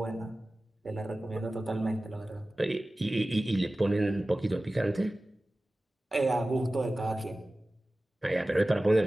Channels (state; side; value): normal; both; correlation 0.96